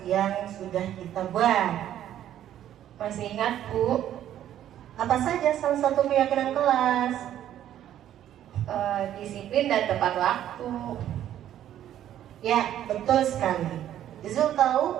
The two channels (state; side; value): quieter; left; 11.4 dB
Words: yang sudah kita buat? Masih ingat, Bu. Apa saja salah satu keyakinan kelas? Disiplin dan tepat waktu. Ya, betul sekali. Izul